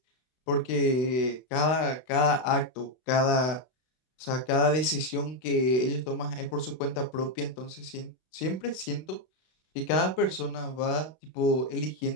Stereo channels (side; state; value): right; late; 32 ms